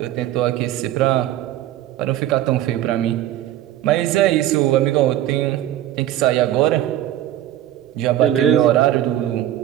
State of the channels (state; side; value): quieter; left; 12.8 dB